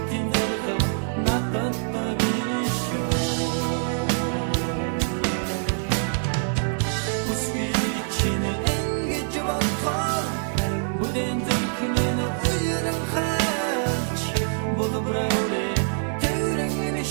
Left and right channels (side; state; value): left; silent; digital silence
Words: зэрэг надад биш Усвичин энгэж батхаар бүдэн зүрхнэн уяран хаач болбрауле тэрэн